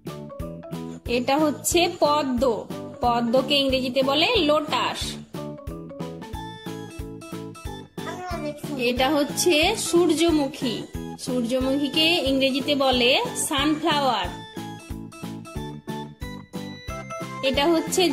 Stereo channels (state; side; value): identical; both; correlation 1.00